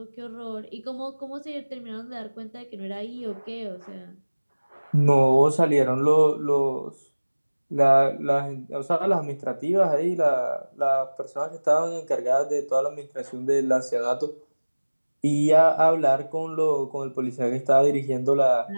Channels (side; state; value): both; inverted; correlation -1.00